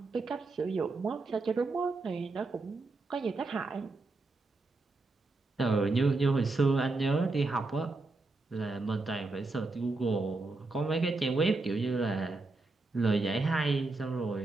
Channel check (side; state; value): left; quieter; 3.4 dB